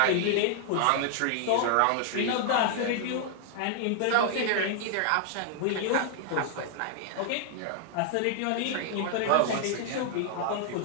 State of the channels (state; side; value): different; both; correlation 0.00